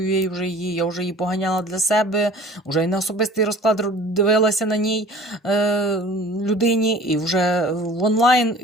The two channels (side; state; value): both; normal; correlation 0.46